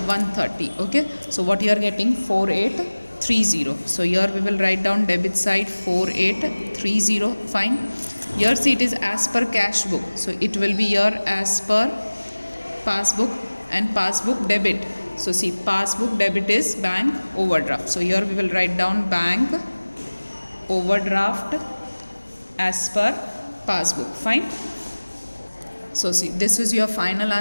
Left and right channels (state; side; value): inverted; both; correlation -1.00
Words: 130. Okay, so what you are getting, 4830. So here we will write down debit side 4830. Fine. Here see, it is as per cash book. So it will be here as per passbook and passbook debit. So see, passbook debit is bank overdraft. So here we will write down bank overdraft as per passbook. Fine. So see, this is your final